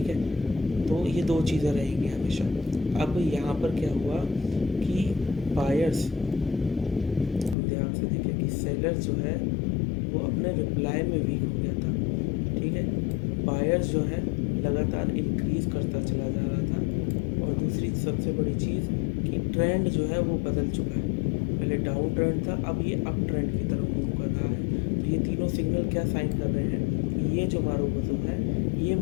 है, तो ये दो चीज़ें रहेंगी हमेशा। अब यहाँ पर क्या हुआ कि बायर्स, हम ध्यान से देखें कि सेलर्स जो है वो अपने रिप्लाई में वीक हो गया था। ठीक है, बायर्स जो है लगातार इंक्रीज़ करता चला जा रहा था। और दूसरी सबसे बड़ी चीज़ कि ट्रेंड जो है वो बदल चुका है। पहले डाउन ट्रेंड था, अब ये अप ट्रेंड की तरफ मूव कर रहा है। तो ये तीनों सिग्नल क्या साइन कर रहे हैं कि ये जो मारूबुजू है, ये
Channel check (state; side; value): drops out; right; at 7.6 s